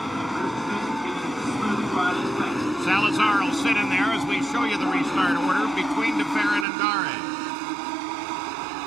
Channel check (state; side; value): drops out; left; at 6.7 s